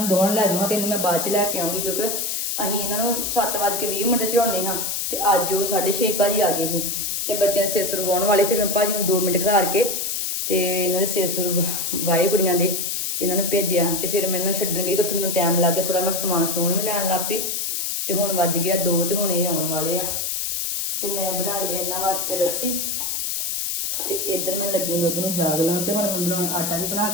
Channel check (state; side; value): noise; left; hiss, 1 dB below the sound